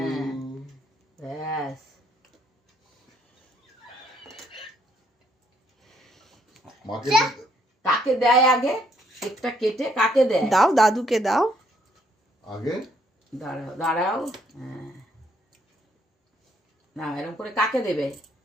ইউ। ব্যাস। মাকে কাকে দেয় আগে? কেকটা কেটে কাকে দেয়? দাও, দাদুকে দাও। আগে দাঁড়াও দাঁড়াও। হ্যাঁ, না এরকম করে কাকে দেবে?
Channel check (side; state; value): both; normal; correlation 0.70